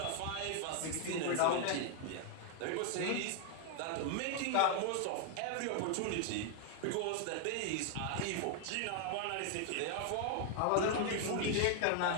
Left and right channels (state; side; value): different; both; correlation 0.00